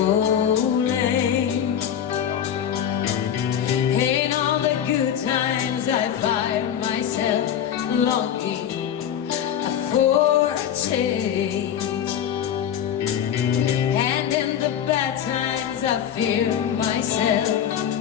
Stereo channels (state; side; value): quieter; right; 9.5 dB